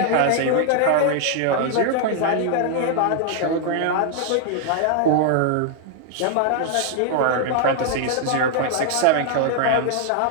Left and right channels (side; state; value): both; different; correlation 0.00